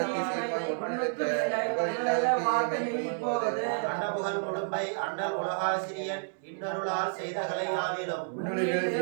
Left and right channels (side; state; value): left; silent; 58 dB below the other